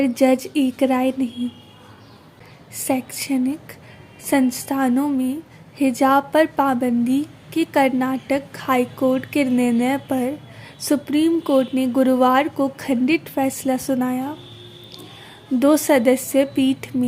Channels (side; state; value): both; identical; correlation 1.00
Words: जज एक राय नहीं। शैक्षणिक संस्थानों में हिजाब पर पाबंदी के कर्नाटक हाईकोर्ट के निर्णय पर सुप्रीम कोर्ट ने गुरुवार को खंडित फैसला सुनाया। 2 सदस्यीय पीठ